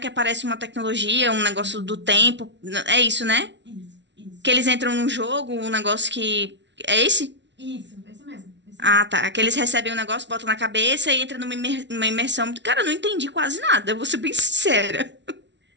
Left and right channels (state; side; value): late; left; 0.51 ms